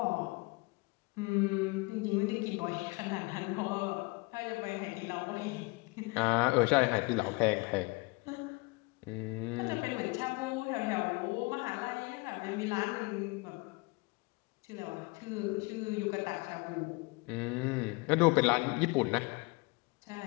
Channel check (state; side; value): quieter; right; 26.6 dB